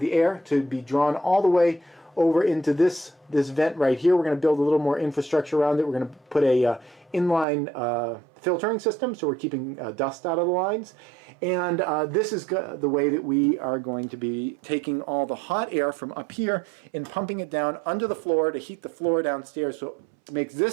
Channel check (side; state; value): left; drops out; at 7.5 s